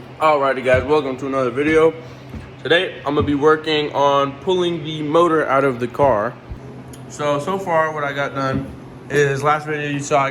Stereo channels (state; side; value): identical; both; correlation 1.00